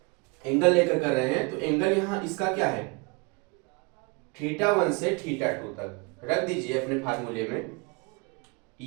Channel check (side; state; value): left; quieter; 29.9 dB